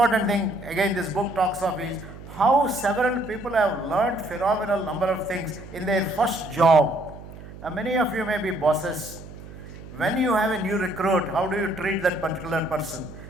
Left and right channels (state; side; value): noise; right; hum, 15 dB below the sound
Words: thing, again, this book talks of is how several people have learned phenomenal number of things in their first job. Now, many of you may be bosses. When you have a new recruit, how do you treat that particular person?